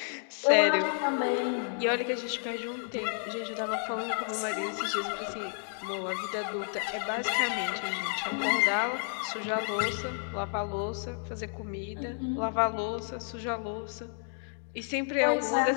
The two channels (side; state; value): right; silent; digital silence